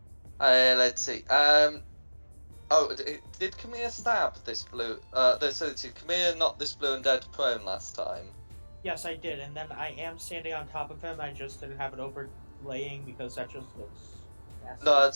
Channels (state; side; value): inverted; both; correlation -1.00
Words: Let's see. Did Camilla stab this blue? Did Camilla knock this Blue Undead prone last time? Yes, I did, and then I am standing on top of him. I just didn't have it overlaying because that just looks nasty. No,